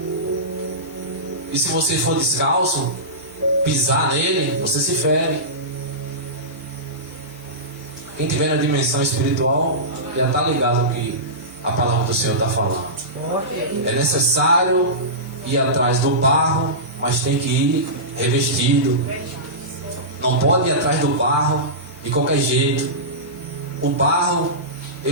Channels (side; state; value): both; normal; correlation -0.18